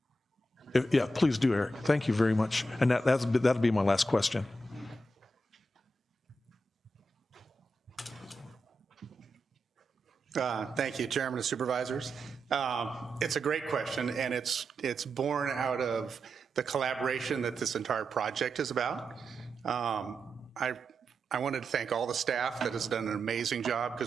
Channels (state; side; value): normal; both; correlation 0.87